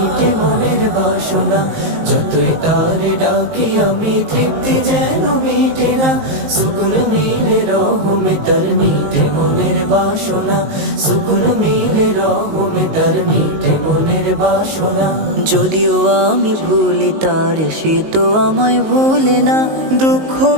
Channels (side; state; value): left; late; 19 ms